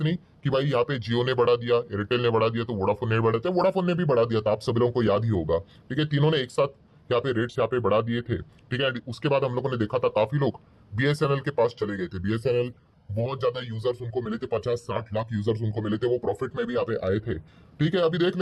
नहीं कि भाई यहाँ पे जियो ने बढ़ा दिया, एयरटेल ने बढ़ा दिया तो वोडाफोन ने बढ़ा दिया, वोडाफोन ने भी बढ़ा दिया था, आप सभी लोगों को याद ही होगा, ठीक है। तीनों ने एक साथ यहाँ पे रेट्स यहाँ पे बढ़ा दिए थे, ठीक है। उसके बाद हम लोगों ने देखा था काफी लोग बीएसएनएल के पास चले गए थे। बीएसएनएल बहुत ज्यादा यूजर्स उनको मिले थे, 50-60 लाख यूजर्स उनको मिले थे, वो प्रॉफिट में भी यहाँ पे आए थे, ठीक है। अभी देख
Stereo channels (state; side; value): identical; both; correlation 1.00